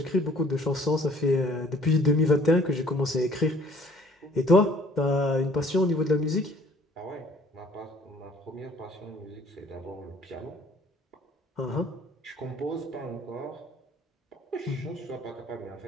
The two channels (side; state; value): both; normal; correlation 0.56